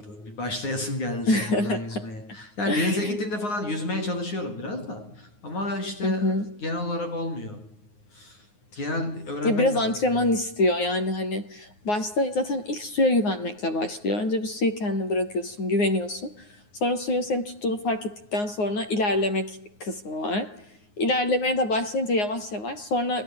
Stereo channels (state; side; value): late; right; 9.6 ms